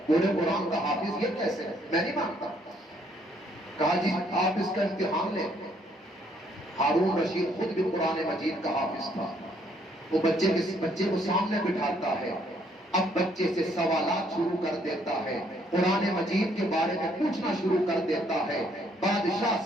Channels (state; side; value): normal; both; correlation 0.67